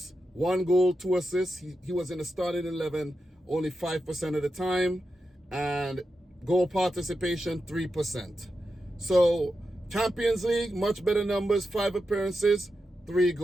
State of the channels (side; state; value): both; normal; correlation 0.88